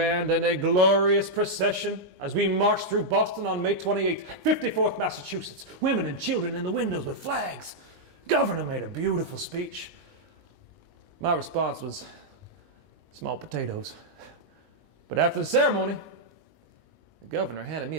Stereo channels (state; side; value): late; left; 20 ms